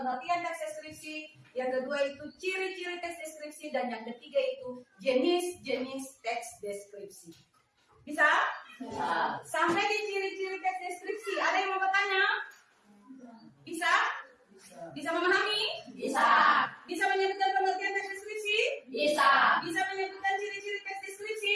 teks deskripsi, yang kedua itu ciri-ciri teks deskripsi, dan yang ketiga itu jenis-jenis teks deskripsi. Bisa? Bisa. Sampai di ciri-ciri teks deskripsi, ada yang mau bertanya? Bisa? Bisa memahami? Bisa. Bisa menyebutkan pengertian teks deskripsi? Bisa. Bisa menyebutkan ciri-ciri teks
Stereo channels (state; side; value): identical; both; correlation 1.00